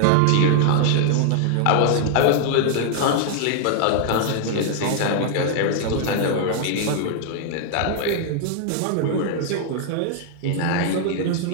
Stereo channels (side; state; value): both; different; correlation 0.00